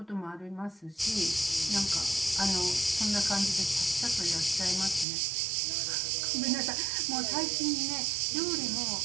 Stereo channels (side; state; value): left; drops out; at 5.1 s